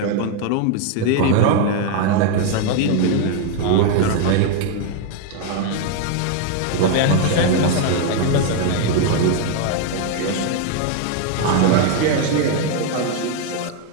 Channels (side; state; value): both; different; correlation 0.01